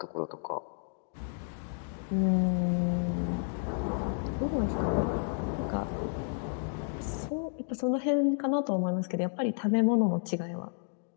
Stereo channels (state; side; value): silent; right; 57 dB below the other